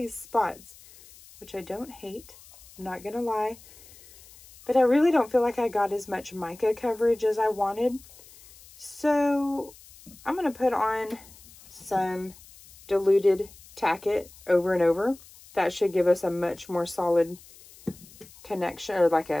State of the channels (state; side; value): noise; left; hiss, 22 dB below the sound